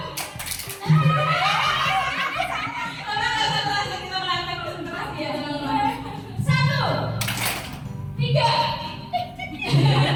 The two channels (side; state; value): both; identical; correlation 1.00